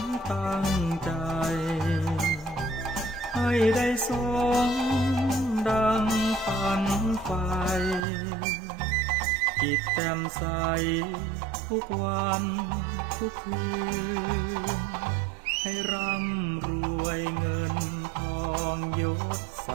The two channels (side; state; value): left; drops out; at 8.1 s